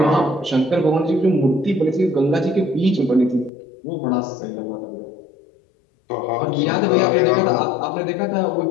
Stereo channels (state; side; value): drops out; right; at 3.5 s